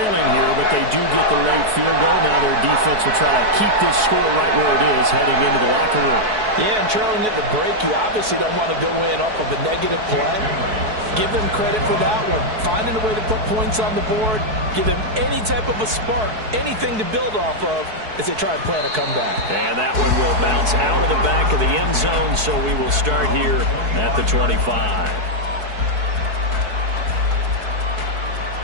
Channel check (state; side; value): late; left; 4.6 ms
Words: here, but they do get the late field goal. Now their defense will try to keep this score right where it is heading into the locker room. Yeah, and trailing at the break, you obviously don't want to go in off of a negative play. Give them credit for that one. Finding a way to put points on the board, give them any type of a spark, anything to build off of as they try and plan a comeback. And that one will bounce out of the back of the end zone, so we will start here at the 25.